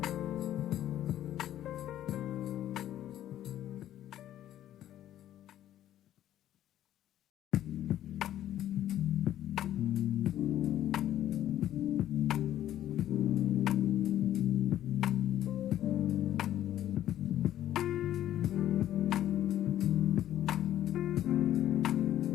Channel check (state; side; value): quieter; right; 12.2 dB